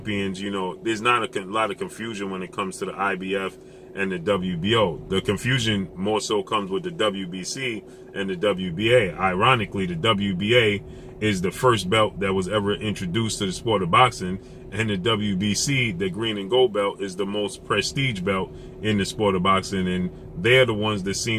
There's not a lot of confusion when it comes to the IBF and the WBO. The confusion more so comes with the WBC and the WBA. Ironically, the WBA is the first belt that was ever introduced to the sport of boxing, and the WBC, the green and gold belt, is the most prestige belt in the sport of boxing, and they're the ones that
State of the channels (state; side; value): identical; both; correlation 1.00